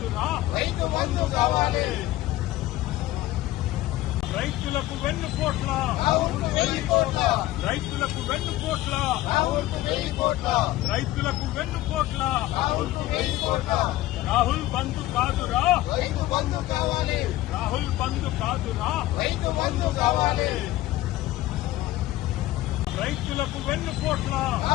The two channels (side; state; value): right; quieter; 16.0 dB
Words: రైతు బంధు కావాలి రైతులకు వెన్నుపోట్ల రాహుల్కు 1000 కోట్ల రైతులకు వెన్నుపోట్ల రాహుల్కు 1000 కోట్ల రైతులకు వెన్నుపోట్ల రాహుల్కు 1000 కోట్ల రాహుల్ బంధు కాదురా రైతు బంధు కావాలి రాహుల్ బంధు కాదురా రైతు బంధు కావాలి రైతులకు వెన్నుపోట్ల